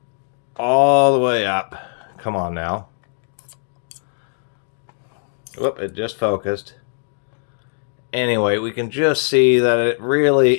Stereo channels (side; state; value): right; silent; 65 dB below the other